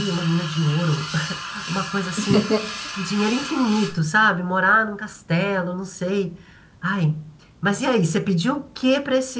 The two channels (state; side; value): identical; both; correlation 1.00